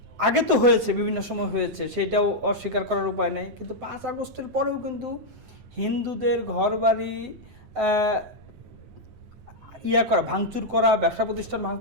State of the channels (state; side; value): late; left; 9.4 ms